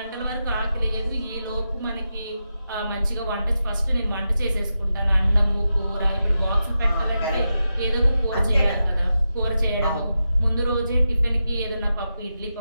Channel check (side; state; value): both; inverted; correlation -0.89